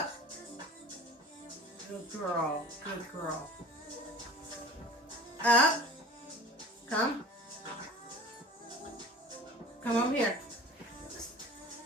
Good girl. Good girl. Up. Come. Come over here.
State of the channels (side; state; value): both; normal; correlation 0.41